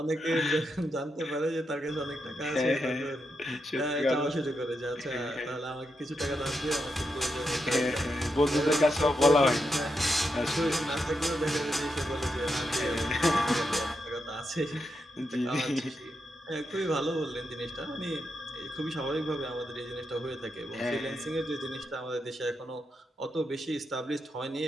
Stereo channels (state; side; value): normal; both; correlation 0.84